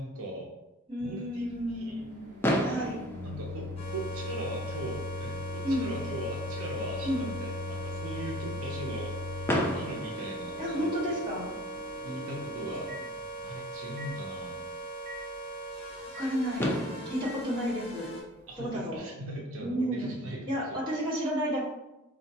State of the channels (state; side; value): normal; both; correlation 0.46